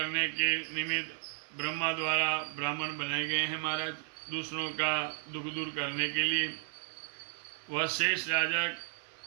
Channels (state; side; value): silent; left; 55 dB below the other